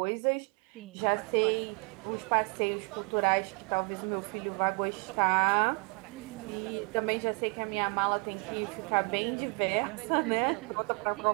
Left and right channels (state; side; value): quieter; left; 35.2 dB